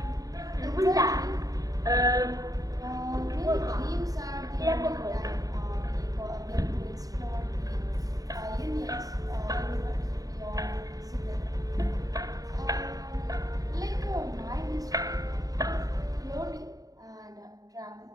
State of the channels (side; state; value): left; late; 0.18 ms